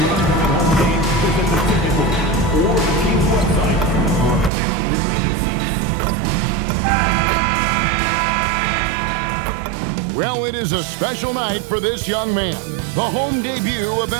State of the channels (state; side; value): drops out; left; at 4.5 s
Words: Well, it is a special night for this young man, the home debut of